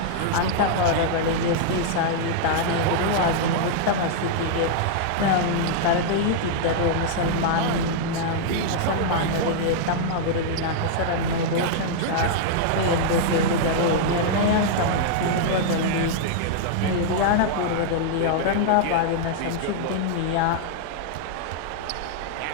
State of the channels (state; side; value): different; both; correlation -0.01